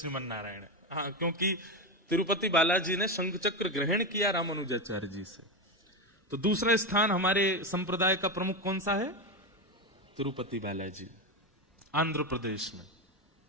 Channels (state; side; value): normal; both; correlation 0.14